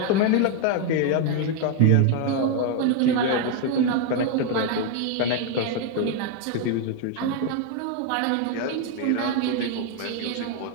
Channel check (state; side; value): different; both; correlation 0.01